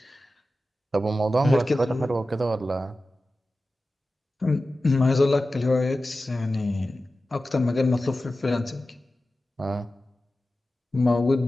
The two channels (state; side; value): normal; both; correlation 0.94